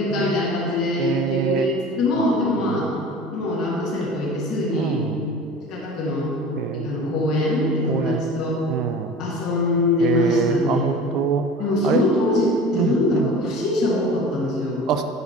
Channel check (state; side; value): normal; both; correlation 0.39